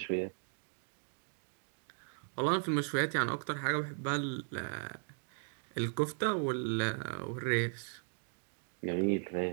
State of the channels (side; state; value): left; silent; digital silence